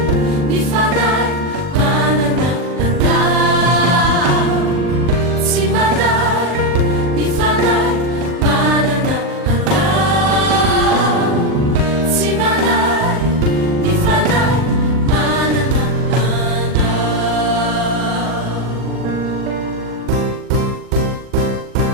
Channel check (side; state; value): left; late; 40 ms